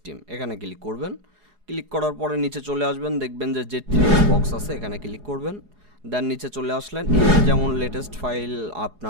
টিম, এখানে ক্লিক করবেন। ক্লিক করার পরে নিচে চলে আসবেন, দেখবেন যে Z3X বক্স আছে, এখানে ক্লিক করবেন। দেন নিচে চলে আসলেন, যেমন লেটেস্ট ফাইল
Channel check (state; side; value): late; left; 4.8 ms